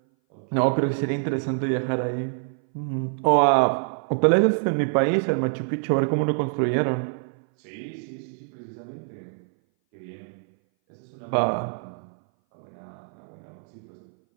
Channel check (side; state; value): left; silent; 59 dB below the other